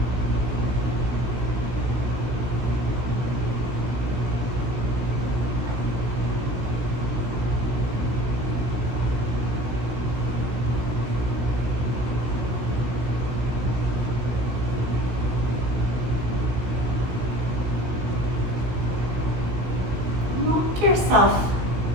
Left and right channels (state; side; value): late; left; 16 ms